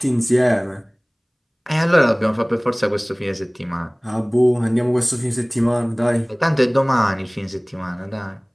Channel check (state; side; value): identical; both; correlation 1.00